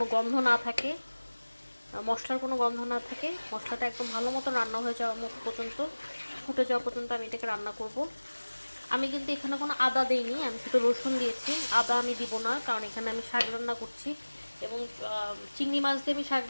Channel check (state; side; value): inverted; both; correlation -1.00